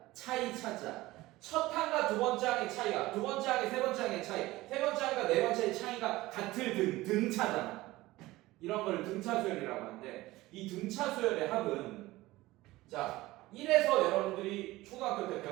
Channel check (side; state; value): left; quieter; 18.5 dB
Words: 차이 차자. 첫 항과 두 번째 항의 차이가, 두 번째 항의 세 번째 항의 차이, 세 번째 항과 네 번째의 차이가 같을 등차잖아. 이런 걸 등차 수열이라고 하는데, 이 등차 수열의 합은, 자, 1에서 여러분들이 초등학교 때